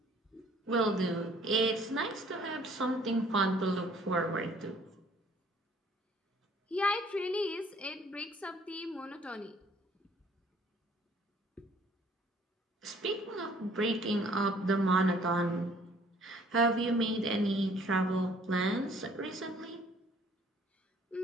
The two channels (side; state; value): both; normal; correlation 0.58